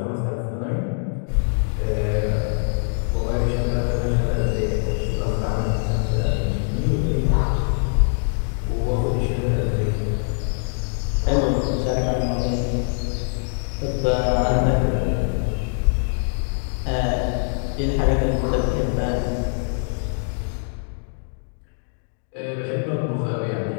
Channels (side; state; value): right; silent; 63 dB below the other